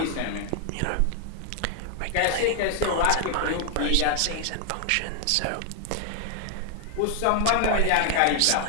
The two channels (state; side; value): different; both; correlation 0.00